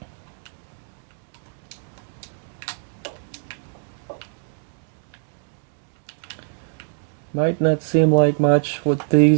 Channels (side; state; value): left; silent; digital silence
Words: Might not seem like much with